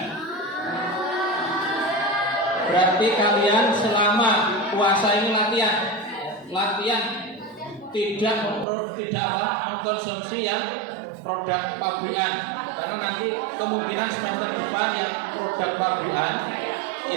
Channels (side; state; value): left; drops out; at 8.7 s